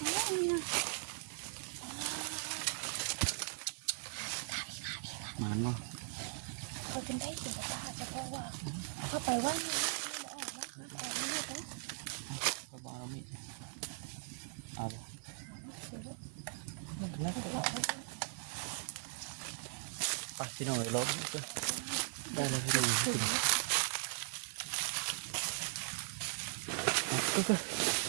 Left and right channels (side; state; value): left; silent; digital silence